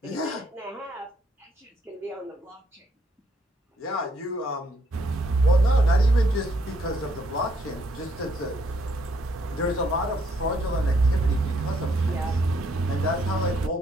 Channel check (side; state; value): both; normal; correlation 0.71